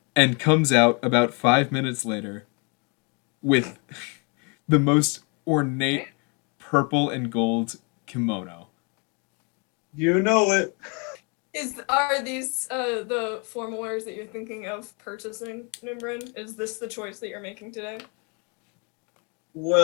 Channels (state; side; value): quieter; right; 34.3 dB